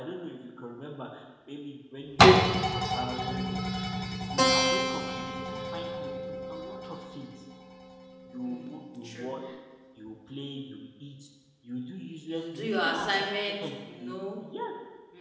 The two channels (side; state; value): both; identical; correlation 1.00